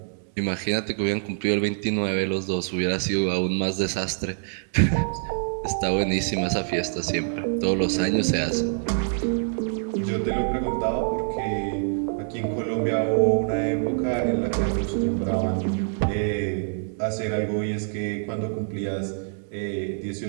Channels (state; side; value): silent; left; 61 dB below the other